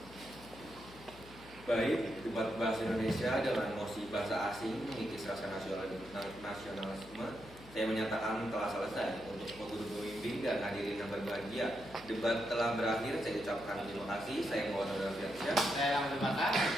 Baik, debat bahasa Indonesia dengan emosi bahasa asing mengikis rasa nasionalisme. Saya menyatakan telah selesai untuk guru pembimbing dan hadirin yang berbahagia. Debat telah berakhir, saya ucapkan terima kasih. Saya Muhammad Rafiq. Saya yang terima kasih.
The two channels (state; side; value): noise; left; hum, 20 dB below the sound